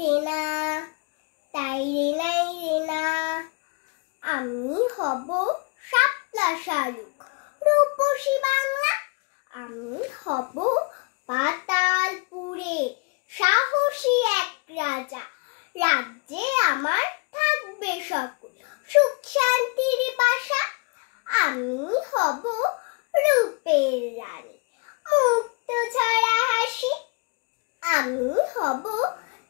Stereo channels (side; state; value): right; quieter; 33.2 dB